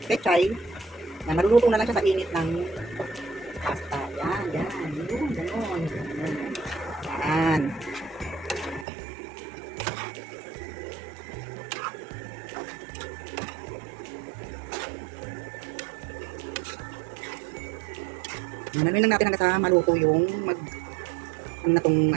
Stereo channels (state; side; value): drops out; left; at 8.8 s